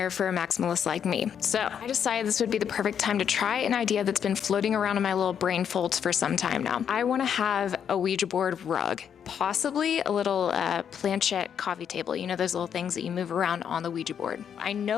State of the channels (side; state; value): right; quieter; 8.2 dB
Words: for a maximalist like me. So I decided this would be the perfect time to try an idea that's been floating around in my little brain folds for some time now. I want to have a Ouija board rug. Possibly a little planchette coffee table, you know, those little things that you move around on the Ouija board. I